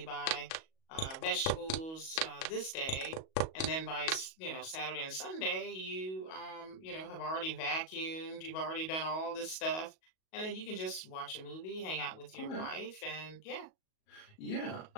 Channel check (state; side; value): late; right; 37 ms